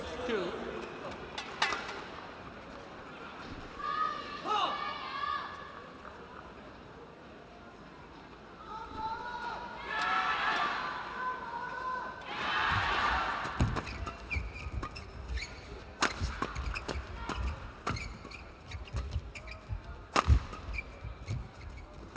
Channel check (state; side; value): identical; both; correlation 1.00